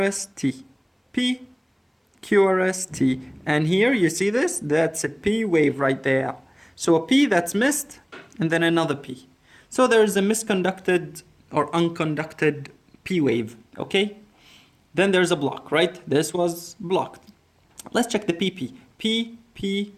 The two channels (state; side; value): identical; both; correlation 1.00